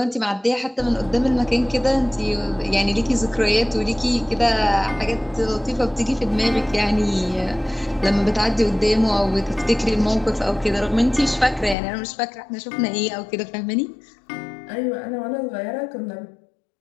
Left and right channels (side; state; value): right; drops out; at 11.8 s